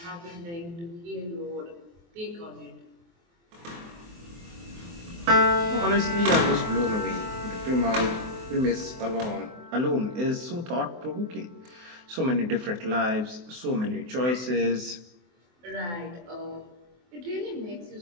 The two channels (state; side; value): late; left; 23 ms